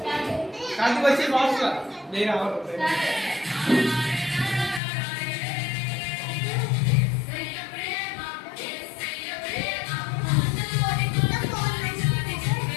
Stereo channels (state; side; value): drops out; right; at 4.8 s